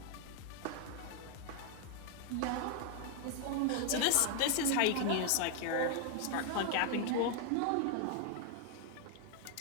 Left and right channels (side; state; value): both; different; correlation 0.00